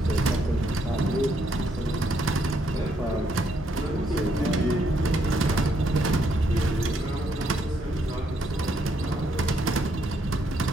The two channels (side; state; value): both; normal; correlation 0.73